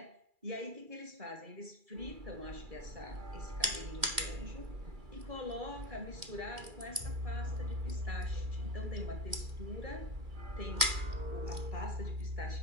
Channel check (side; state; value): left; late; 2.3 ms